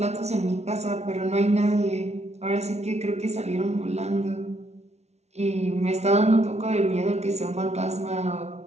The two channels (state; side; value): late; left; 0.31 ms